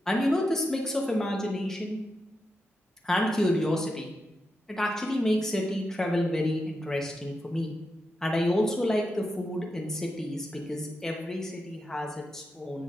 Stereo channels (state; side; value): normal; both; correlation 0.87